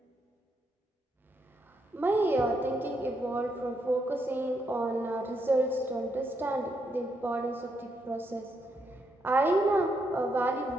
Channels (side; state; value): both; normal; correlation 0.79